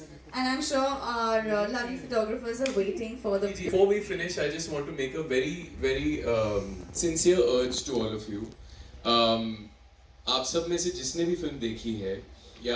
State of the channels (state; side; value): identical; both; correlation 1.00